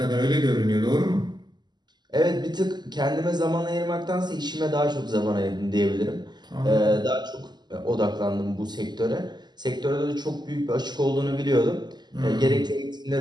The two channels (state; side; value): late; left; 0.21 ms